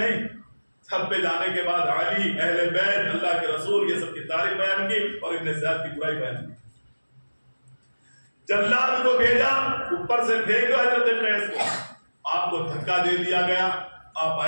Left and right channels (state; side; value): inverted; both; correlation -1.00